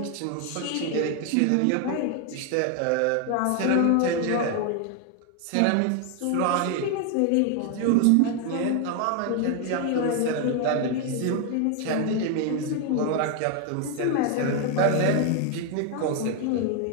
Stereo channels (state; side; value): different; both; correlation 0.01